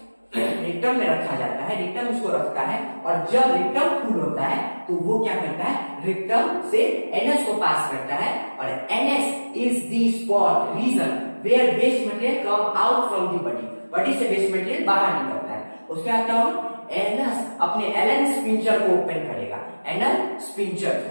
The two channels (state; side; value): inverted; both; correlation -1.00